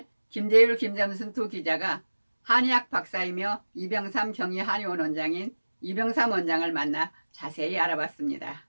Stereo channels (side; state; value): both; inverted; correlation -1.00